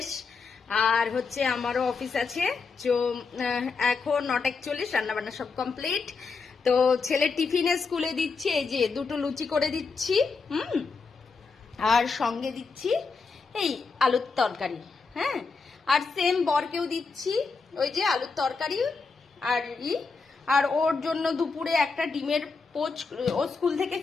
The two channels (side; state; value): right; quieter; 4.6 dB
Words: আর হচ্ছে আমারও অফিস আছে। তো এখন 9:41, রান্নাবান্না সব কমপ্লিট। তো ছেলে টিফিনে স্কুলে দিচ্ছি, এই যে দুটো লুচি করে দিচ্ছি, আর সঙ্গে দিচ্ছি এই আলুর তরকারি। হ্যাঁ, আর সেম বরকেও দিচ্ছি ওই যে আলুর তরকারি আর আর ওর জন্য দুপুরে একটা ডিমের পোচ। ও স্কুল থেকে